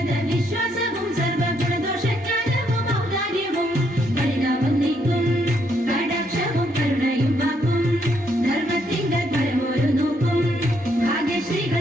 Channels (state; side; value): normal; both; correlation 0.74